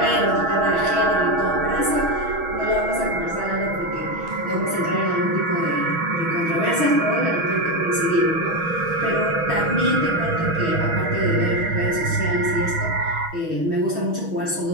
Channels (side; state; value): left; late; 6.2 ms